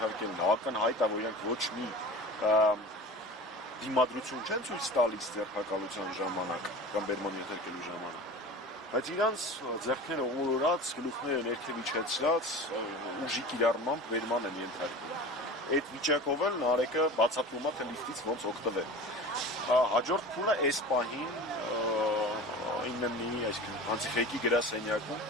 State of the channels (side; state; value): both; normal; correlation 0.35